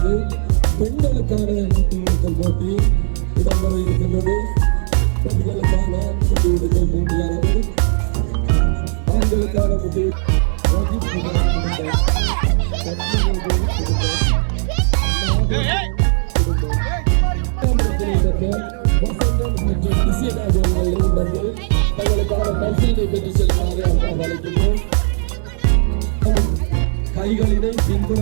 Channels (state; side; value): silent; left; digital silence